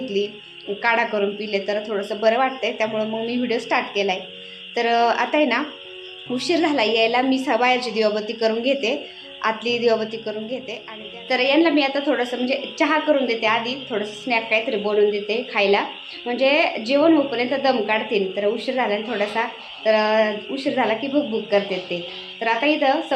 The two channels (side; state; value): both; identical; correlation 1.00